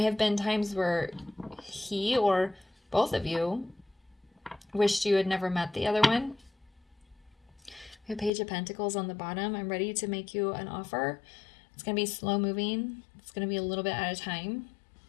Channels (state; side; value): drops out; right; at 8.3 s